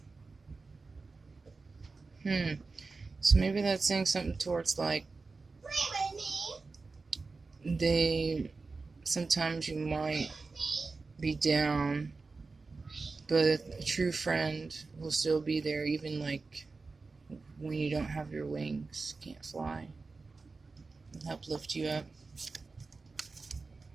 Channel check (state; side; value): quieter; left; 4.0 dB